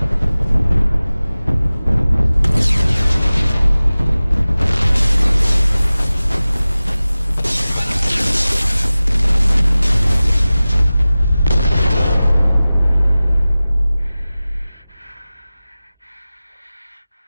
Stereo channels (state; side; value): inverted; both; correlation -0.97